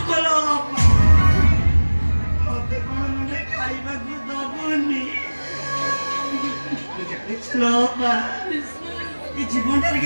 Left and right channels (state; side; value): inverted; both; correlation -1.00